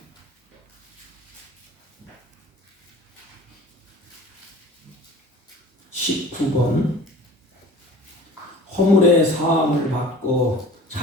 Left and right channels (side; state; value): both; normal; correlation 0.43